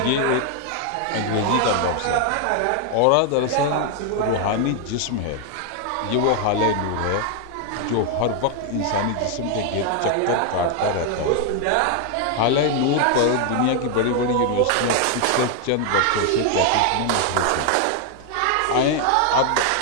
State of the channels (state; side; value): different; both; correlation 0.00